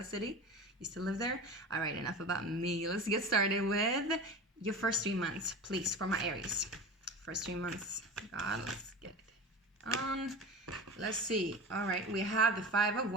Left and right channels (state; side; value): normal; both; correlation 0.31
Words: city. Used to live there. All right, enough about me. Let's get started with your first 3 months, please, for my Aries. First 3 months. God, let's get it on. Let's see. All right, we have the Five of